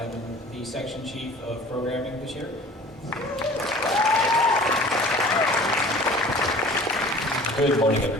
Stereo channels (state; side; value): normal; both; correlation 0.45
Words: the section chief of programming this year. Good morning,